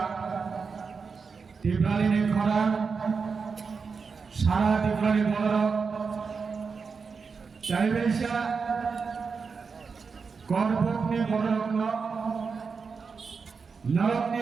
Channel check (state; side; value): quieter; left; 5.2 dB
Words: Tibrali Ni Khoran Sara Tibrali Bolorok Chaibesha Korbuk Ni Bolorok Norok